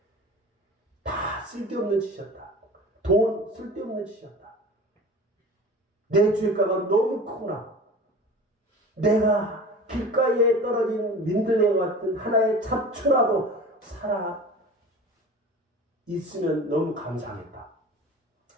다 쓸데없는 짓이었다. 돈 쓸데없는 짓이었다. 내 죄가가 너무 크구나. 내가 길가에 떨어진 민들레와 같은 하나의 잡초라도 살아 있으면 너무 감사하겠다.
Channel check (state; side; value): normal; both; correlation 0.38